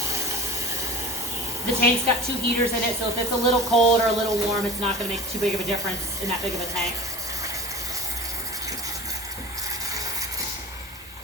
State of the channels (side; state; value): both; normal; correlation 0.37